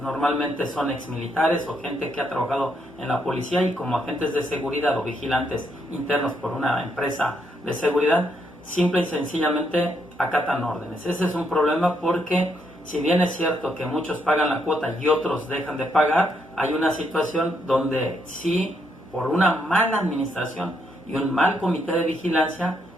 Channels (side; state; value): both; normal; correlation 0.76